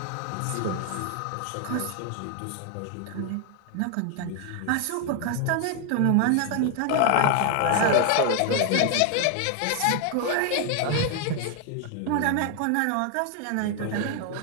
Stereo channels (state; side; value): different; both; correlation 0.00